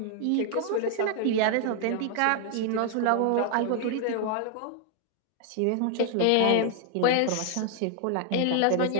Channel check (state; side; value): different; both; correlation 0.00